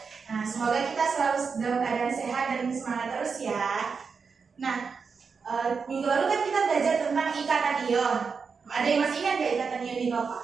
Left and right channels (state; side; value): quieter; left; 5.4 dB